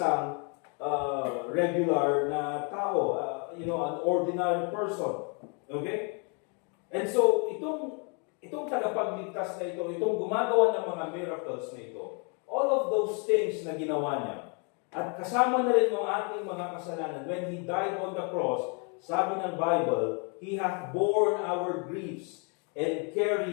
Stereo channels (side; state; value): right; quieter; 36.3 dB